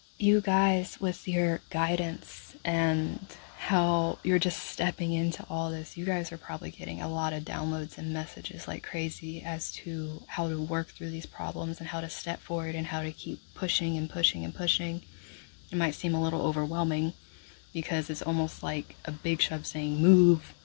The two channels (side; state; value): right; silent; digital silence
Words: you guys, with your guidance and how you're just stepping into all this, you guys are probably getting a lot of downloads and messages like crazy as to how to work through these problems and how to step forward and how to keep pushing and pushing and pushing. It might seem a little overwhelming because it's almost like a big shove saying move,